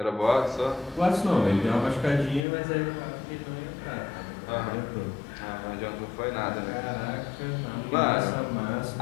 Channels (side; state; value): right; drops out; at 2.4 s